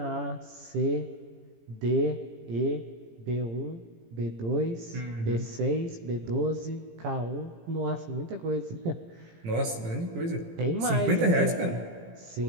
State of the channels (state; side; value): late; left; 18 ms